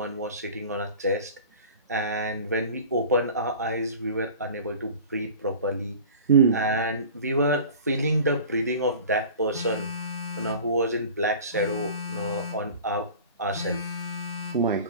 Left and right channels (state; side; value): inverted; both; correlation -0.41